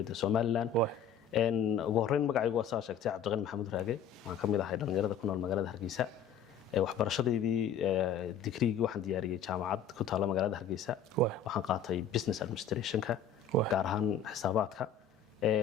Soomaaliland ugu horeyn magacaygu waa saa sheegtay Cabdiqani Maxamuud Raage waxaan kamid ahay dhalinyarada ku nool magaalada Hargeysa waxbarashadeedii digriigii waxaan diyaariyay jaamacad ku taala magaalada Hargeysa waxaan qaatay business administration-ka gaar ahaan xisaabaadka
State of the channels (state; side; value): quieter; right; 6.5 dB